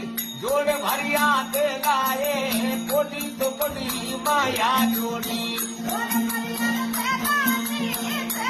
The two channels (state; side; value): identical; both; correlation 1.00